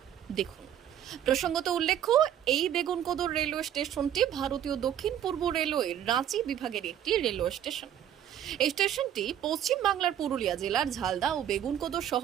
দেখুন। প্রসঙ্গত উল্লেখ্য, এই বেগুনকোদর রেলওয়ে স্টেশনটি ভারতীয় দক্ষিণ পূর্ব রেলওয়ের রাঁচি বিভাগের একটি রেলওয়ে স্টেশন। এই স্টেশনটি পশ্চিম বাংলার পুরুলিয়া জেলার ঝালদা ও বেগুনকোদর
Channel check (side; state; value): left; quieter; 10.3 dB